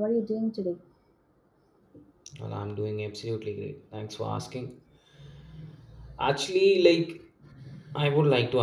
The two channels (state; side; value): identical; both; correlation 1.00